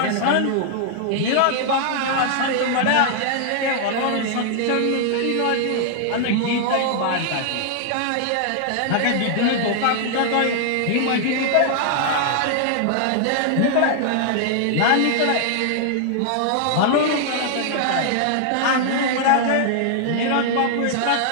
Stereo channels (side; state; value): both; different; correlation -0.01